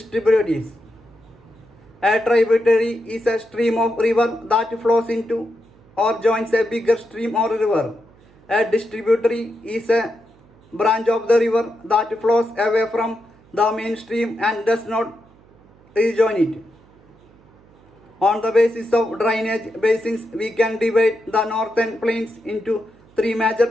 A tributary is a stream of river that flows into or joins a bigger stream or river. A distributary is a branch of the river that flows away from the main stream and does not rejoin it. On the basis of drainage basins, we can divide the northern plains into 3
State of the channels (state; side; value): noise; right; hum, 28 dB below the sound